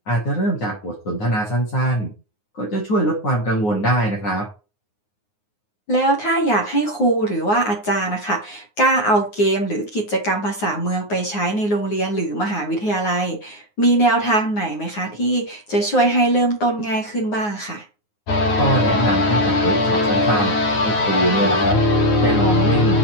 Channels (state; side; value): late; right; 9.6 ms